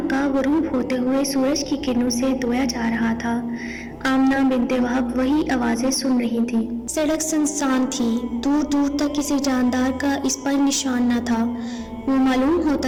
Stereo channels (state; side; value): identical; both; correlation 1.00